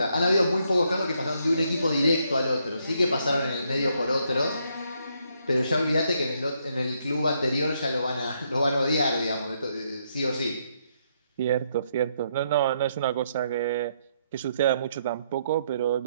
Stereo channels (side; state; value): both; inverted; correlation -0.74